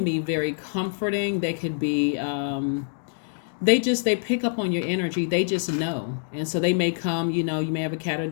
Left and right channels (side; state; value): right; silent; digital silence